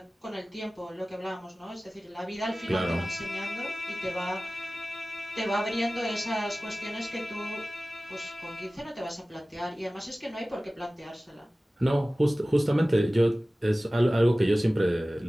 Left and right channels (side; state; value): both; normal; correlation 0.97